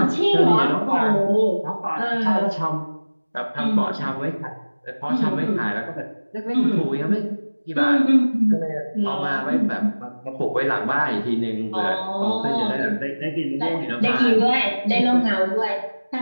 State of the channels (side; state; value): both; inverted; correlation -1.00